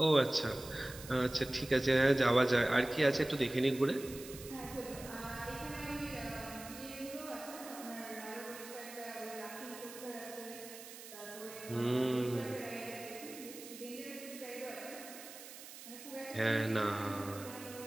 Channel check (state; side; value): noise; right; hiss, 14 dB below the sound